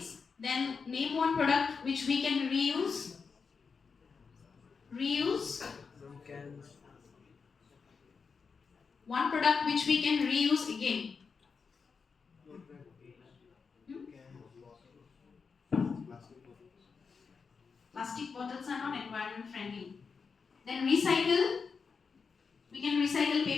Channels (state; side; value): quieter; right; 5.4 dB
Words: Then name one product which we can reuse. Cans. One product which we can reuse again. Plastic bottles are not environment friendly. Then recycle. We can recycle